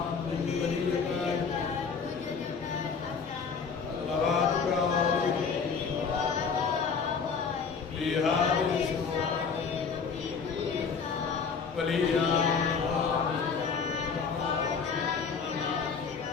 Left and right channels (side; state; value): right; quieter; 5.7 dB